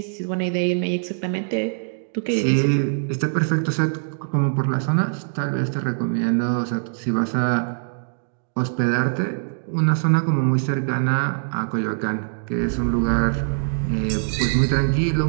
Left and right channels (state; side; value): silent; left; digital silence